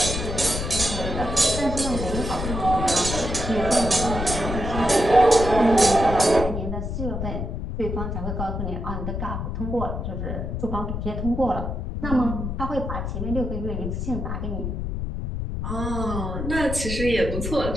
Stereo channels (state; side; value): noise; left; rumble, 4 dB below the sound